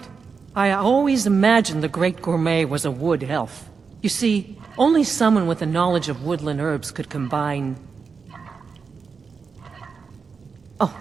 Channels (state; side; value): quieter; left; 5.3 dB